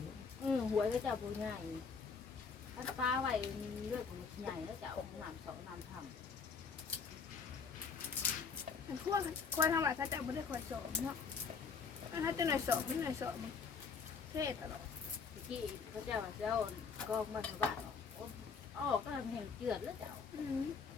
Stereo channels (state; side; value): quieter; right; 5.4 dB